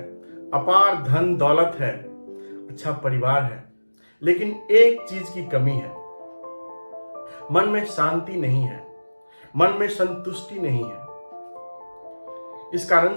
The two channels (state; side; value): inverted; both; correlation -1.00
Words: अपार धन दौलत है, अच्छा परिवार है, लेकिन एक चीज की कमी है। मन में शांति नहीं है, मन में संतुष्टि नहीं है। इस कारण